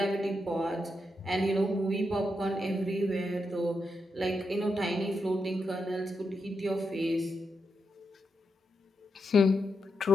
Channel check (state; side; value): normal; both; correlation 0.84